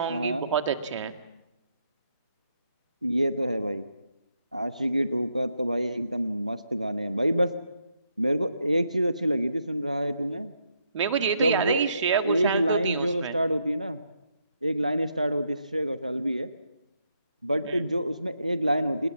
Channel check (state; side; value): inverted; both; correlation -0.78